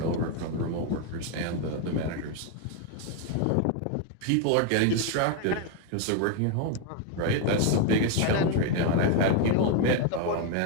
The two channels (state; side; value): different; both; correlation 0.01